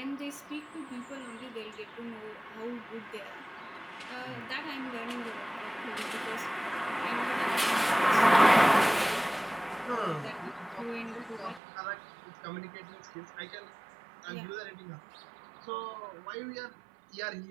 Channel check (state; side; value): drops out; left; at 11.6 s